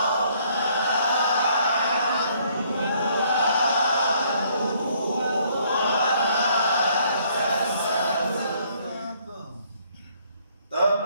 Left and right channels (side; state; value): both; inverted; correlation -0.65